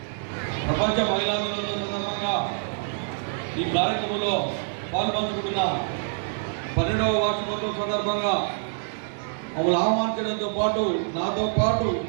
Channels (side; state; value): left; silent; digital silence